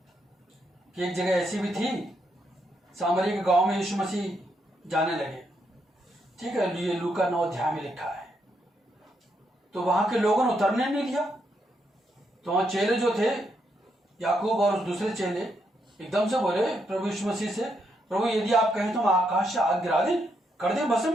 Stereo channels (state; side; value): normal; both; correlation 0.79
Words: कि एक जगह ऐसी भी थी, सामरी के गांव में यीशु मसीह जाने लगे। ठीक है, ये लूका 9 अध्याय में लिखा है। तो वहां के लोगों ने उतरने नहीं दिया। तो वहां चेले जो थे, याकूब और उस दूसरे चेले, एकदम से बोले प्रभु यीशु मसीह से, प्रभु यदि आप कहें तो हम आकाश से आग गिरा दें, कर दें